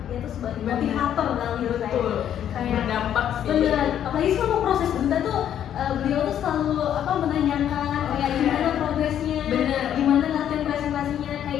tuh sebagai Benar. motivator dalam hidup saya. Betul, Kayak berdampak sih. bener, apalagi selama proses duta tuh beliau tuh selalu menanyakan kayak gimana progresnya, Bener. gimana latihan presentasinya,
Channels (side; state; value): right; quieter; 10.1 dB